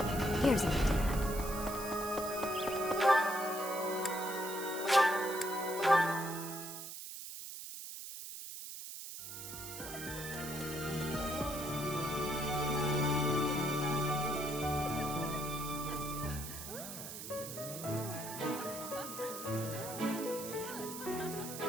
Here's an idea.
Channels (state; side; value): noise; right; hiss, 9 dB below the sound